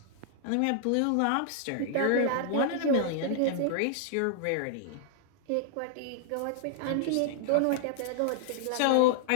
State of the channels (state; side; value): different; both; correlation -0.01